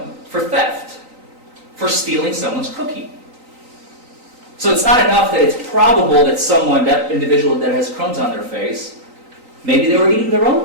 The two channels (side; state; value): left; late; 3.9 ms